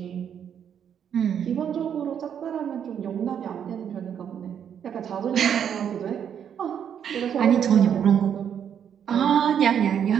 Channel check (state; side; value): quieter; left; 8.5 dB